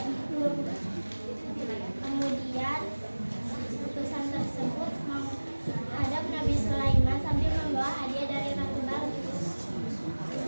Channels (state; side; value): inverted; both; correlation -1.00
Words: itu. Kemudian utusan tersebut menghadap Nabi Sulaiman sambil membawa hadiah dari Ratu Balkis.